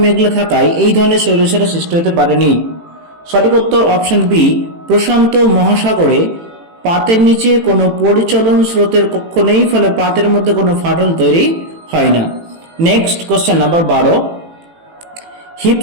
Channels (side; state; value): left; late; 18 ms